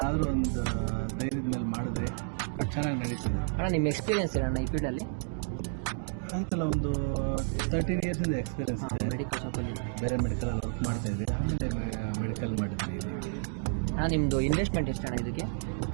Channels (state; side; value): silent; left; 57 dB below the other